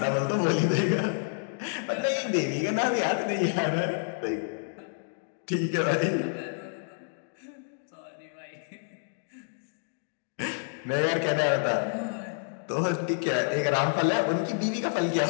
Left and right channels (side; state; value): right; silent; digital silence